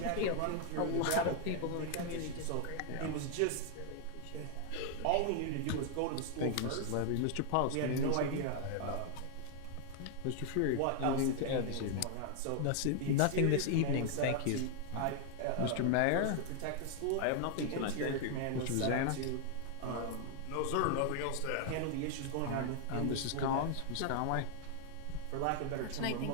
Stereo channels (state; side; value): different; both; correlation 0.00